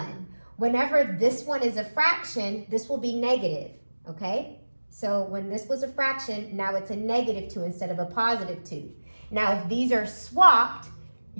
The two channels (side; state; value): both; inverted; correlation -1.00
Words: Whenever this one is a fraction, this will be negative, okay? So when this was a fraction, now it's a -2 instead of a +2. Now if these are swapped,